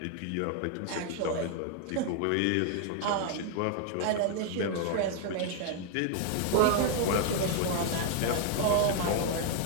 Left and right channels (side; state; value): both; different; correlation 0.00